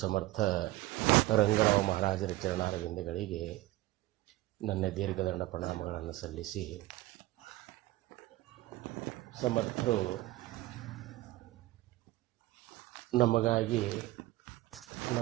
ಸಮರ್ಥ ರಂಗರಾವ್ ಮಹಾರಾಜರ ಚರಣಾರವಿಂದಗಳಿಗೆ ನನ್ನ ದೀರ್ಘದಂಡ ಪ್ರಣಾಮಗಳನ್ನು ಸಲ್ಲಿಸಿ, ಸಮರ್ಥರು ನಮಗಾಗಿ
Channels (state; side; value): quieter; left; 17.7 dB